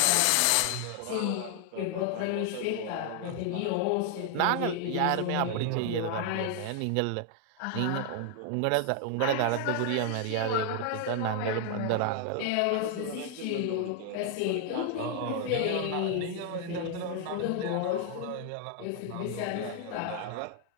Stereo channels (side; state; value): both; different; correlation 0.00